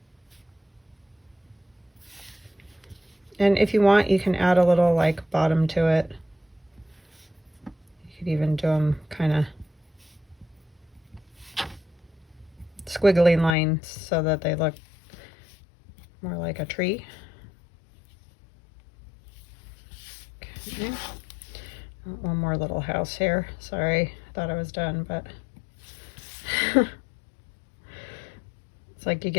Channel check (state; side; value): drops out; right; at 13.6 s